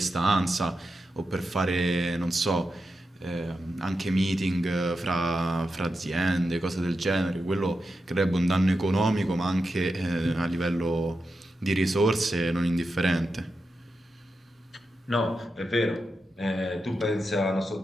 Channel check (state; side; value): normal; both; correlation 0.89